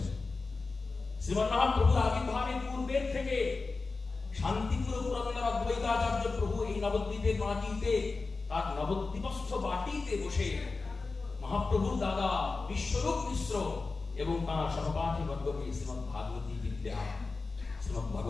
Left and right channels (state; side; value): quieter; right; 3.9 dB